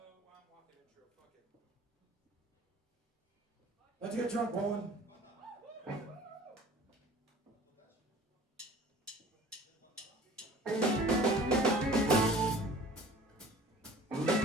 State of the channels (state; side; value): normal; both; correlation 0.47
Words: I'm walking intro. Fuck it. Let's get drunk, Bowen.